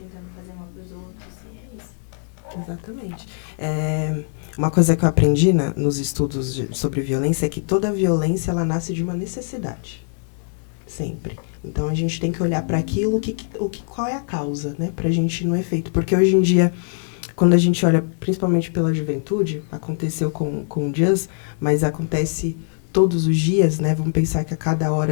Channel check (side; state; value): right; silent; digital silence